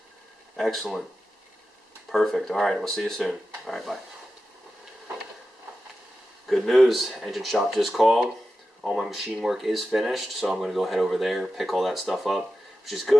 Excellent. Perfect. Alright, we'll see you soon. Alright, bye. Good news. Engine shop just called. All my machine work is finished, so I'm going to go head over there, pick all that stuff up, which is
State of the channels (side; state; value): both; normal; correlation 0.92